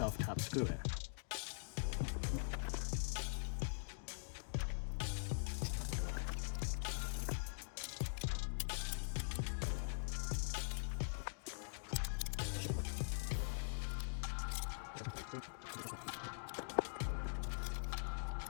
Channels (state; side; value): silent; right; digital silence